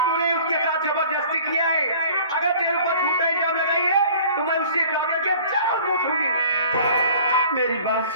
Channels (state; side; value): inverted; both; correlation -0.48